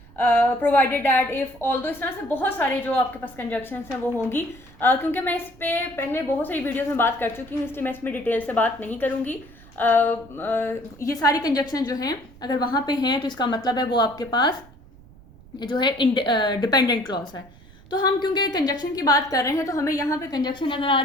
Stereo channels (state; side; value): noise; right; rumble, 23 dB below the sound